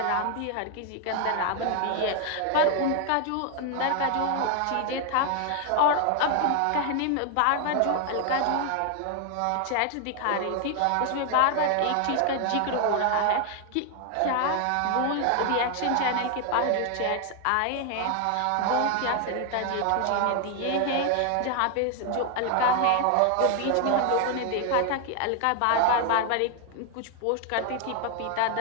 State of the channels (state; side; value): different; both; correlation 0.00